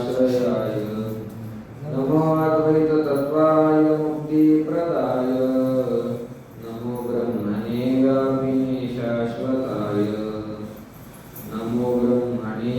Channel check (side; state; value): both; identical; correlation 1.00